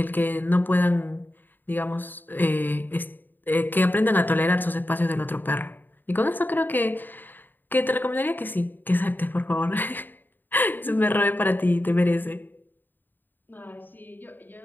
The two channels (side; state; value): right; late; 0.091 ms